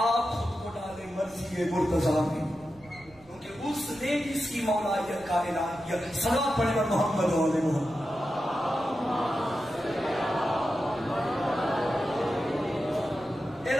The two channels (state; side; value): noise; right; rumble, 26 dB below the sound